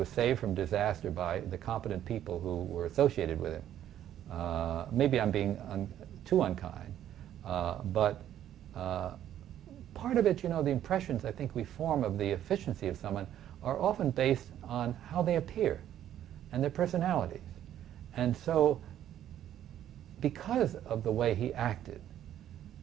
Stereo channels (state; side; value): quieter; left; 11.2 dB